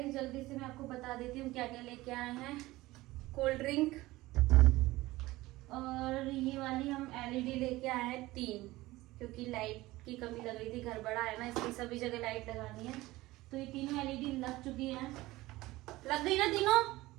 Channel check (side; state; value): left; quieter; 18.7 dB